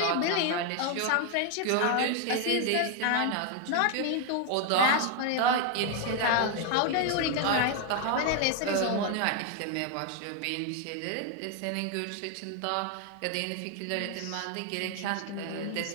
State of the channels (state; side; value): different; both; correlation 0.01